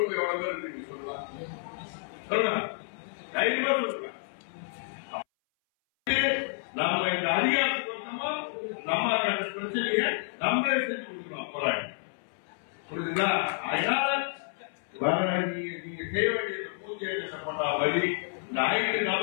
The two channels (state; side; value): silent; right; 58 dB below the other